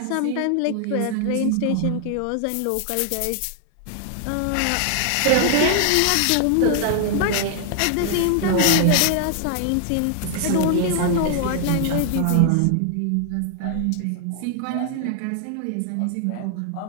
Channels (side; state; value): both; different; correlation 0.00